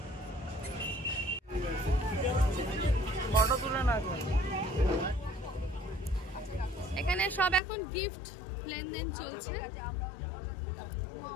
এখানে সব এখন গিফট লেনদেন চলছে,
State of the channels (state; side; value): drops out; right; at 7.6 s